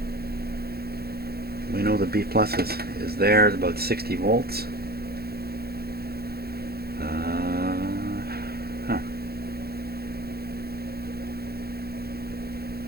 We know the B plus is there. It's about 60 volts.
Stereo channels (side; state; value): left; late; 0.46 ms